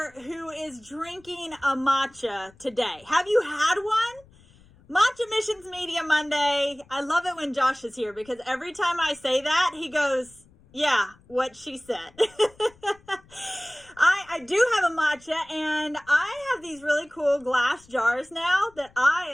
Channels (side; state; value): left; noise; rumble, 28 dB below the sound